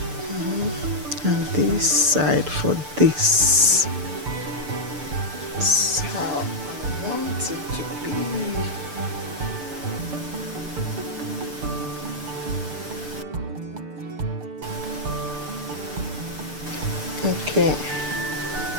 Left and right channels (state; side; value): late; left; 6.8 ms